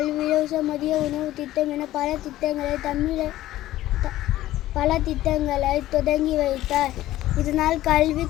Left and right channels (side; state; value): right; quieter; 14.9 dB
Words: இலவச மதிய உணவு திட்டம் என பல திட்டங்களை தொடங்கி வைத்தார். இதனால் கல்வி